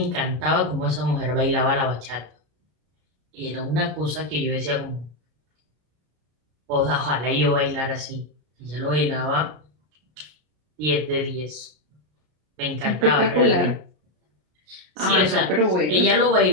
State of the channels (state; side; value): late; left; 33 ms